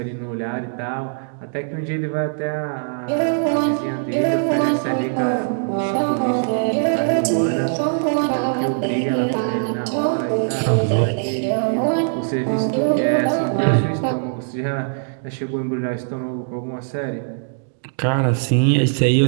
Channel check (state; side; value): silent; left; digital silence